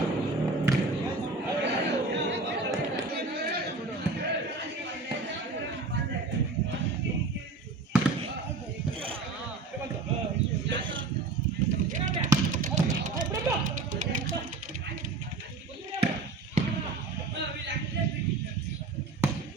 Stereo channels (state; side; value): quieter; left; 3.7 dB